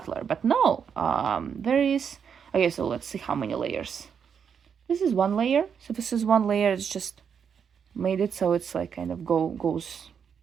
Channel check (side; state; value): left; quieter; 7.2 dB